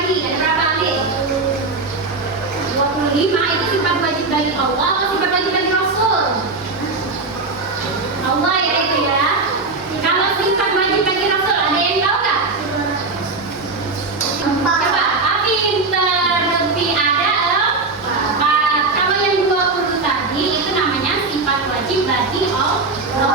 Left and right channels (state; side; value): quieter; left; 3.7 dB